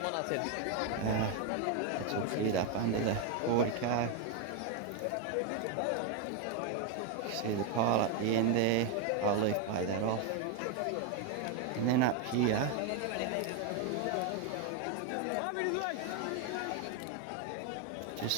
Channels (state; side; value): different; both; correlation 0.02